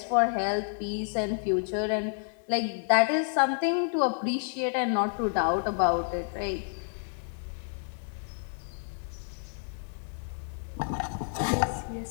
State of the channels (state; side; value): silent; right; 58 dB below the other